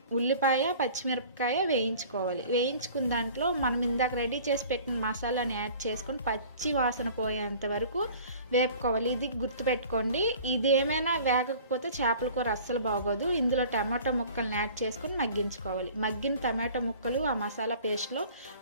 ఉల్లిపాయ, పచ్చిమిరపకాయ వేయించుకోవాలి. వేయించుకున్న దాంట్లో మనం ఇందాక రెడీ చేసి పెట్టిన మసాలాని యాడ్ చేసుకొని పచ్చి వాసన పోయేంత వరకు వేపుకోవాలి. ఇది గుర్తుపెట్టుకోండి, ఇది ఏమైనా వేగకపోతే చేపల కూర అస్సలు బాగోదు. ఇందులో టమాటో ముక్కల్ని యాడ్ చేసుకొని మగ్గించుకోవాలి. మగ్గిన టమాటో ముక్కలు ఆ మసాలా పేస్ట్లో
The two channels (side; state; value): both; inverted; correlation -0.46